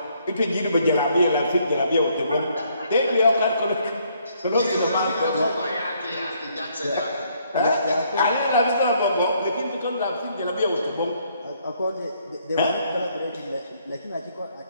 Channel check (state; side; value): inverted; both; correlation -0.69